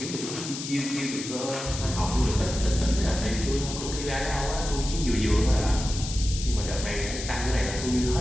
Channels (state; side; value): noise; left; hiss, 8 dB below the sound